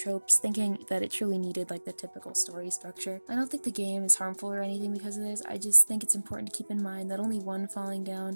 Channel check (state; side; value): inverted; both; correlation -1.00